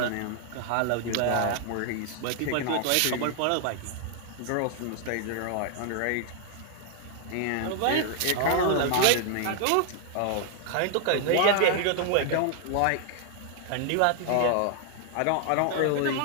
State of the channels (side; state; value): both; different; correlation 0.00